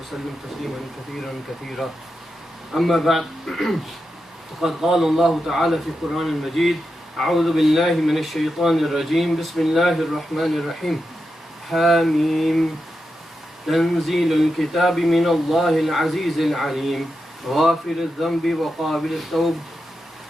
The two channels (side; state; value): both; normal; correlation 0.88